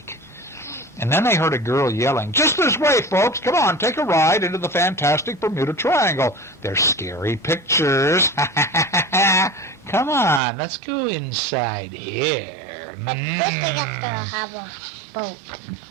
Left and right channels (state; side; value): drops out; left; at 10.4 s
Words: And then they heard a girl yelling, just this way, folks. Come on, take a ride into the fantastic Bermuda Triangle. They're scary pictures. Come on, let's go inside here. But first they have to have a boat.